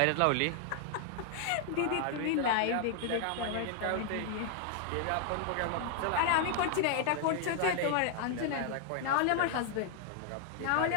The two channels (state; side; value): different; both; correlation 0.00